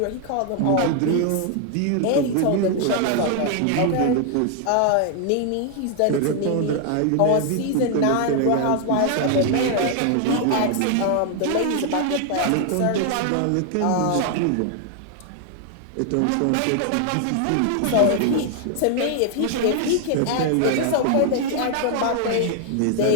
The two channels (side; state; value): both; different; correlation 0.00